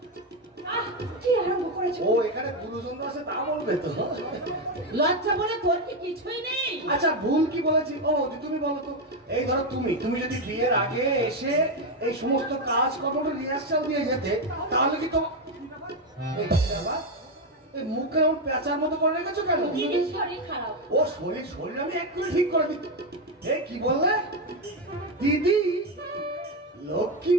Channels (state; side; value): normal; both; correlation 0.08